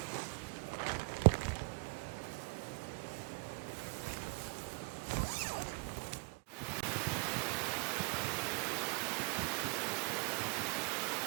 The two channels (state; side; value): quieter; left; 31.4 dB